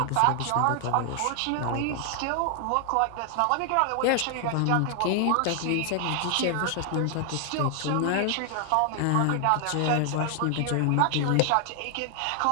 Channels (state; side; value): different; both; correlation 0.00